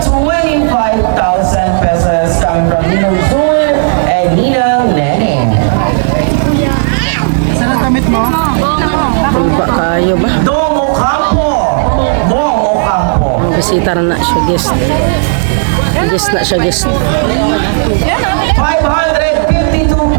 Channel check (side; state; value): left; silent; digital silence